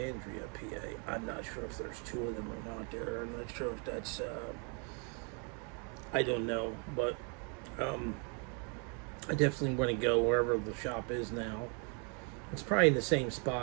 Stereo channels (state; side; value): quieter; left; 36.7 dB